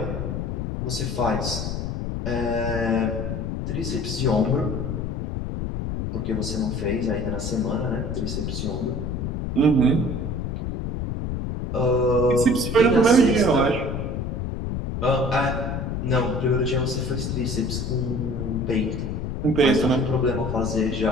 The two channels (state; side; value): noise; left; rumble, 3 dB below the sound